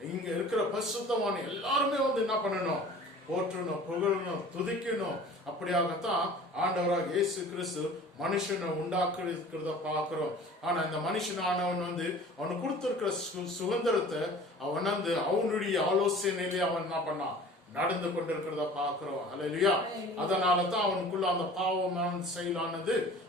இங்க இருக்கிற பரிசுத்தமான எல்லாருமே என்ன பண்ணணும், போற்றணும், புகழணும், துதிக்கணும். அப்படியாகத்தான் ஆண்டவராக இயேசு கிறிஸ்து மனுஷனை உண்டாக்குறத பாக்குறோம். ஆனா இந்த மனுஷனானவன் அவனுக்கு கொடுத்திருக்கிற சுதந்திரத்தை அவன் அவனுடைய ஆலோசனையிலே அவன் என்ன பண்ணான், நடந்து கொண்டிருக்கிறத பாக்குறோம். ஹல்லேலூயா. அதனாலதான் அவனுக்குள்ள அந்த பாவமான செயலானது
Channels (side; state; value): both; normal; correlation 0.45